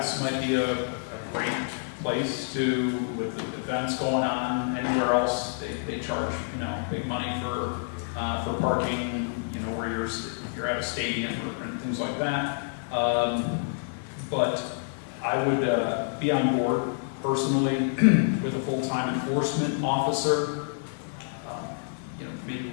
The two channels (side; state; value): right; silent; 55 dB below the other